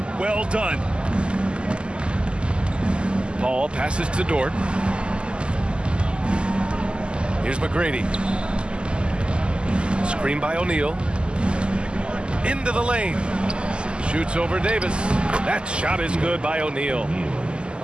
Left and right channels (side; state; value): left; late; 0.050 ms